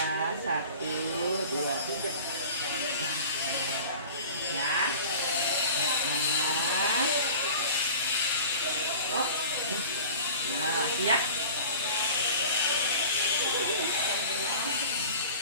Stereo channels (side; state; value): both; inverted; correlation -0.41